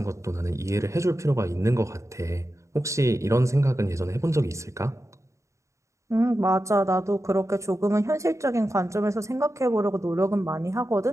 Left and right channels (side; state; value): left; late; 0.14 ms